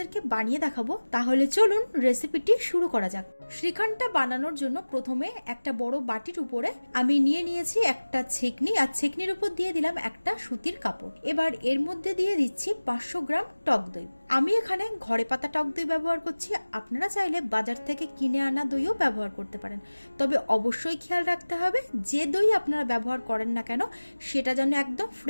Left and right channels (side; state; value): both; inverted; correlation -1.00